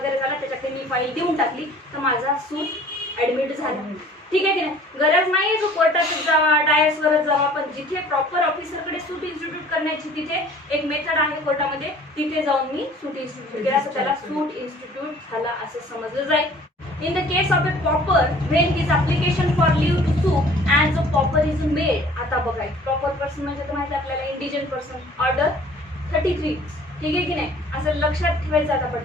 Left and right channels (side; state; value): both; normal; correlation 0.51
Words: झाला, त्याच्याकडे मी फाईल देऊन टाकली तर माझा सूट ऍडमिट झाला. ठीक आहे की नाही. गरज नाही जो कोर्टातच जावा, डायसवरच जावा, पण जिथे प्रॉपर ऑफिसरकडे सूट इन्स्टिट्यूट करण्याची तिथे एक मेथड आहे कोर्टामध्ये, तिथे जाऊन मी सूट इन्स्टिट्यूट केला तर त्याला सूट इन्स्टिट्यूट झाला असं समजलं जाईल. In the case of a pauper, when his application for leave to sue and the pauper is made. आता बघा, प्रॉपर पर्सन म्हणजे तर माहिती आपल्याला इंडिजन पर्सन, ऑर्डर 33. ठीक आहे की नाही. असं लक्षात ठेवायचं आता